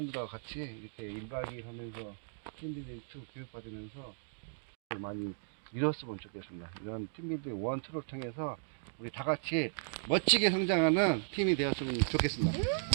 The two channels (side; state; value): left; silent; digital silence